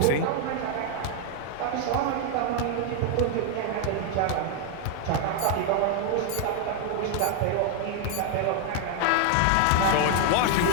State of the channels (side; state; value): both; different; correlation 0.00